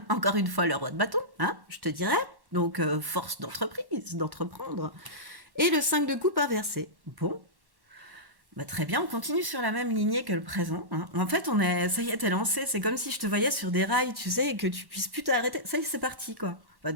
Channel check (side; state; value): left; late; 1.1 ms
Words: encore une fois le roi de bâton, hein, je te dirais. Donc force d'entreprise, d'entreprendre. Et le 5 de coupe inversé. Bon, bah très bien, on continue sur la même lignée que le présent. Hein. En fait, ça y est, t'es lancé. C'est comme si je te voyais sur des rails, tu sais, et que tu puisses plus t'arrêter. Ça y est, c'est parti, quoi. Bah,